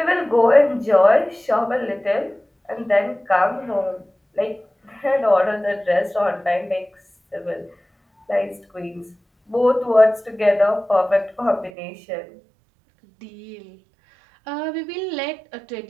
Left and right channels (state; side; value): drops out; left; at 11.7 s